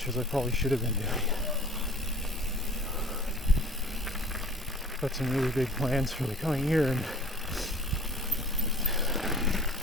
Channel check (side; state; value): both; normal; correlation 0.46